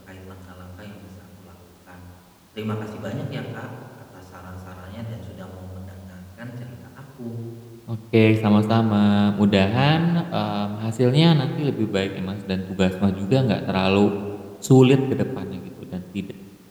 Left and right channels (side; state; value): both; identical; correlation 1.00